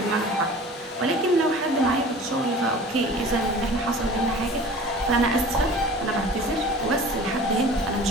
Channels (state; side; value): normal; both; correlation 0.42